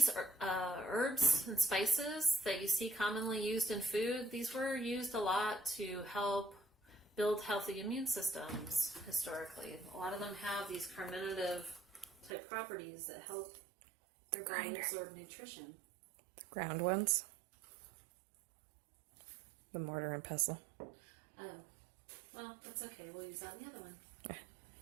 herbs and spices that you see commonly used in food, these were used a lot to help build healthy immune systems historically. A lot of them have these carminative type properties that help your body absorb nutrition. The ground ones? The mortar and pestle. Oh, well, that's okay. We'll use that in the other one.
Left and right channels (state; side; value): drops out; left; at 12.3 s